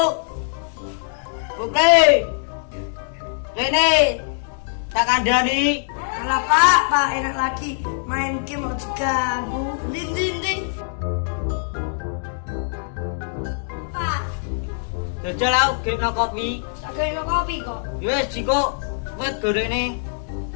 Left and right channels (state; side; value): silent; right; digital silence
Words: Putri. Rene. Tak kandani. Alah Pak enak lagi main game mau diganggu. Ding. Pak, Jajal aku game no kopi. tak gawe kopi kok. Wes jiko wet gorene.